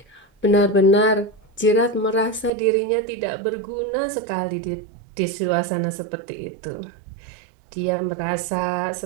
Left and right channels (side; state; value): left; drops out; at 2.5 s